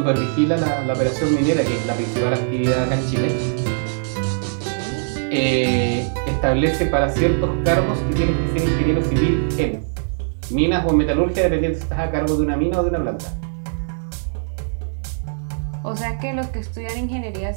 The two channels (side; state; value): left; silent; digital silence